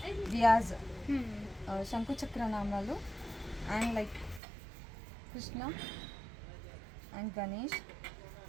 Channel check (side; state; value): left; drops out; at 4.4 s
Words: దియాజ్, శంకు చక్ర నామాలు and like Krishna and Ganesh,